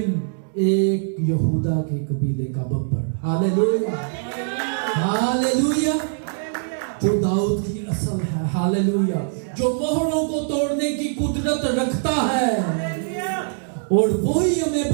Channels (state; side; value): silent; left; 63 dB below the other